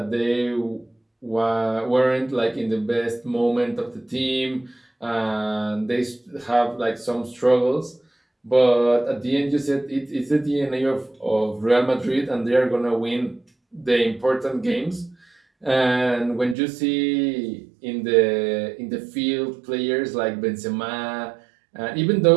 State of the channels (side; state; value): left; drops out; at 16.6 s